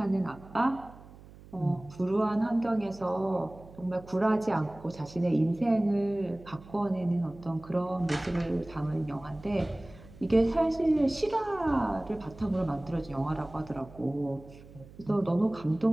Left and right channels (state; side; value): noise; right; hum, 20 dB below the sound